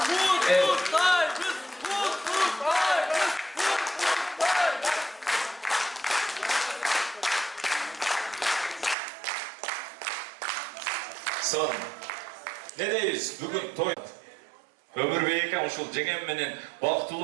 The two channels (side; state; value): left; drops out; at 9.0 s